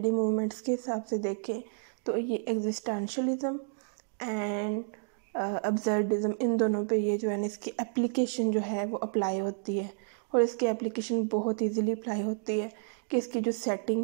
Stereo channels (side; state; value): left; silent; digital silence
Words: मूवमेंट्स के हिसाब से देखें तो ये एग्जिस्टेंशलिज्म एंड अब्सर्डिज्म, इन दोनों पे ये जो है ना इसकी एप्लीकेशन जो है वो अप्लाई होती है। और इसकी एप्लीकेशन बहुत इजीली अप्लाई होती है कि इसकी जो